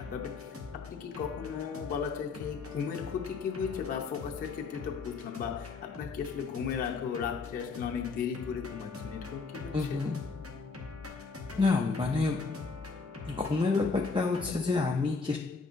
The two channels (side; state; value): right; quieter; 4.5 dB